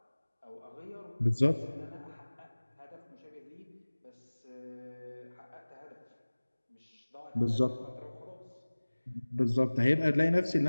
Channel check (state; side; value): inverted; both; correlation -1.00